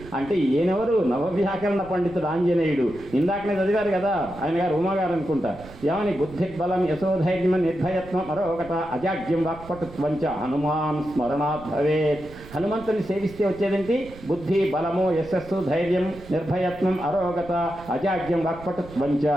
అంటే ఈయనెవరు? నవవ్యాకరణ పండితుడు ఆంజనేయుడు. ఇందాకనే చదివారు కదా ఆయన గారు, ఉమాగారు అనుకుంటా. ఏమని? బుద్ధి బలం యశోధైర్యం నిర్భయత్వం మరొకట అజాగ్యం వాక్పటుత్వంచ హనుమాన్ స్మరణాత్ భవేత్. హనుమంతుని సేవిస్తే వచ్చేదేంటి? బుద్ధి, బలము, యశస్సు, ధైర్యం, నిర్భయత్వం, అరోగత, అజాగ్యం వాక్పటుత్వంచ.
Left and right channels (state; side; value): noise; right; rumble, 18 dB below the sound